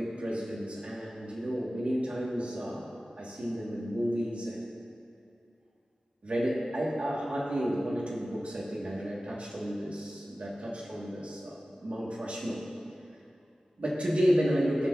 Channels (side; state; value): both; normal; correlation 0.96